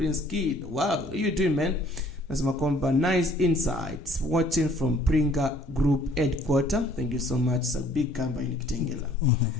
Kid. Wow, how you doing, man? Anasema kwamba nice insights watching from Pringa Group headquarter. Thank you so much. It's a big company in Kitengela.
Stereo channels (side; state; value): both; normal; correlation 0.58